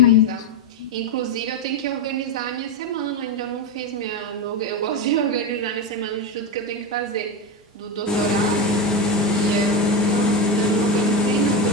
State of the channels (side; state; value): both; normal; correlation 0.14